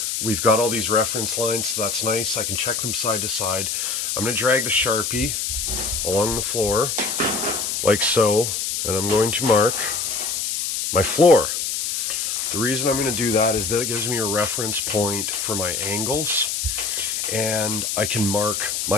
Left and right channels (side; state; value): left; noise; hiss, 1 dB below the sound